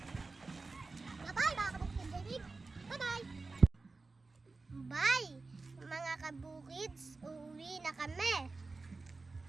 Bye! Mga kabukids, uuwi na kami.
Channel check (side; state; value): left; quieter; 3.8 dB